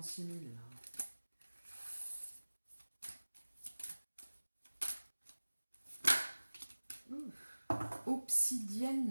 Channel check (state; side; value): inverted; both; correlation -1.00